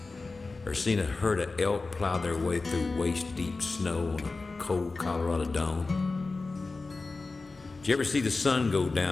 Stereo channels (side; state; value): right; quieter; 3.7 dB